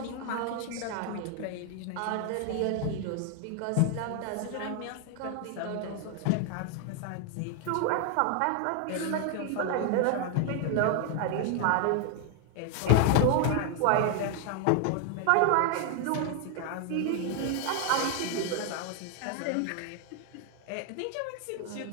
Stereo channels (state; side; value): different; both; correlation 0.00